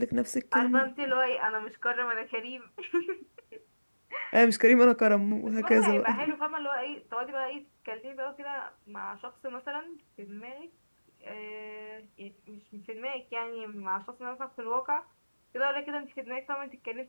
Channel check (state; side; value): inverted; both; correlation -1.00